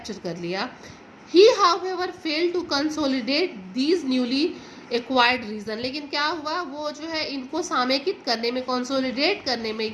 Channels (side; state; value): both; identical; correlation 1.00